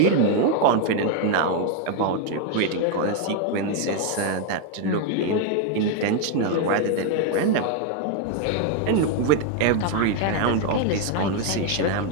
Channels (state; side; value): different; both; correlation 0.01